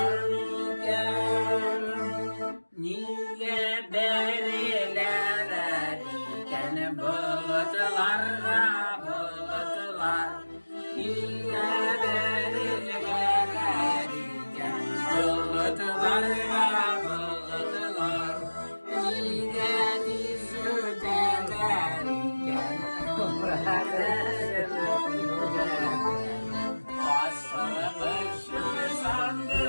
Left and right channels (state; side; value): inverted; both; correlation -1.00